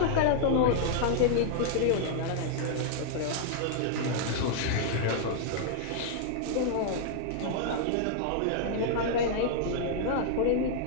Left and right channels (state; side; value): different; both; correlation -0.01